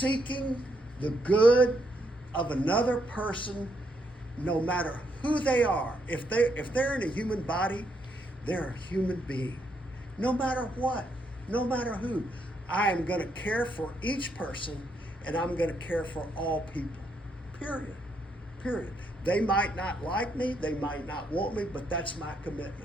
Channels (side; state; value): both; normal; correlation 0.76